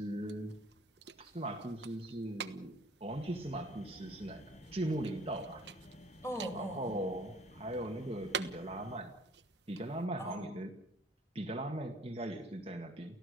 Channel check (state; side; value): normal; both; correlation 0.54